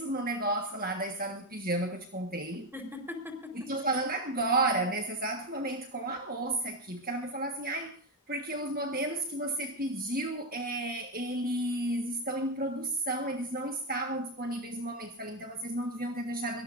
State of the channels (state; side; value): normal; both; correlation 0.10